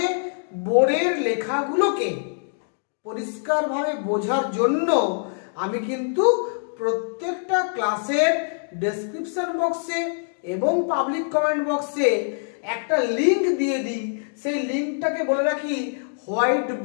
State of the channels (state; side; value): silent; right; digital silence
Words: বোর্ডের লেখাগুলোকে পরিষ্কারভাবে বোঝার জন্য আমি কিন্তু প্রত্যেকটা ক্লাসের ডেসক্রিপশন বক্সে এবং পাবলিক কমেন্ট বক্সে একটা লিংক দিয়ে দিই। সেই লিংকটাকে বলে রাখি হোয়াইট